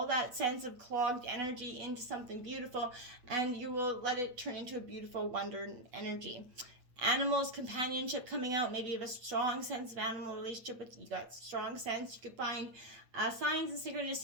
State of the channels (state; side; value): late; left; 8.1 ms